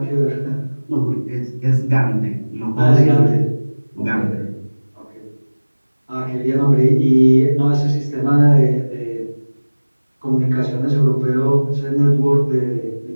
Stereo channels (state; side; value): inverted; both; correlation -1.00